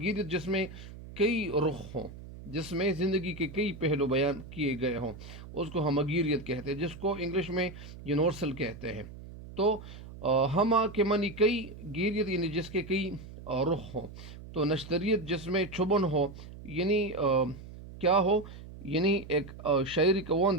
جس میں کئی رخ ہوں، جس میں زندگی کے کئی پہلو بیان کیے گئے ہوں، اس کو ہمگیریت کہتے ہیں، جس کو انگلش میں یونیورسل کہتے ہیں۔ تو ہما کے معنی کئی، گیریت یعنی جس کے کئی رخ ہوں، تو نشتریت جس میں چھبن ہو، یعنی کیا ہو، یعنی ایک شاعری کا وہ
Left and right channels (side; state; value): right; noise; hum, 14 dB below the sound